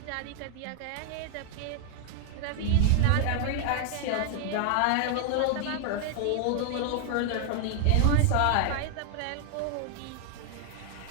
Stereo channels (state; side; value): different; both; correlation 0.00